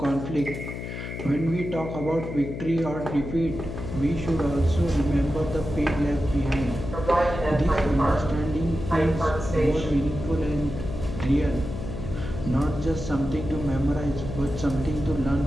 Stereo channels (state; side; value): noise; left; hum, 7 dB below the sound